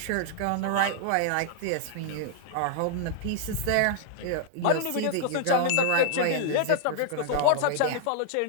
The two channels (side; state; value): both; different; correlation -0.01